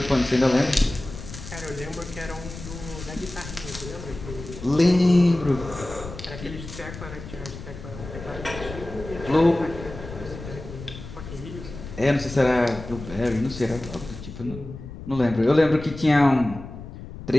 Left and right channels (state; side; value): noise; left; rumble, 12 dB below the sound